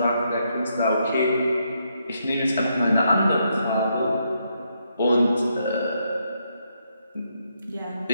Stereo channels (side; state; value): both; inverted; correlation -0.78